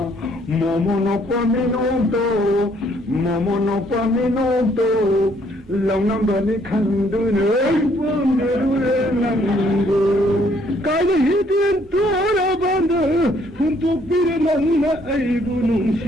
모모노빠 미노도 모모노빠 미노도 렁넘버니 칸두는 밤들의 낭보 까지 히든 돌아반다 흠뚝비를 만나 아이고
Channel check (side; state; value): both; normal; correlation 0.66